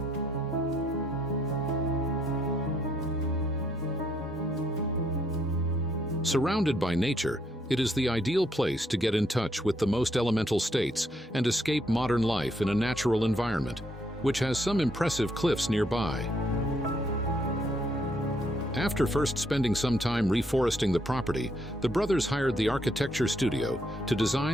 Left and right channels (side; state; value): both; normal; correlation 0.72